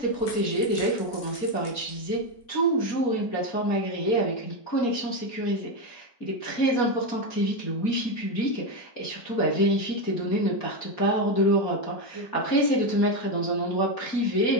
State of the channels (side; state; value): right; late; 4.2 ms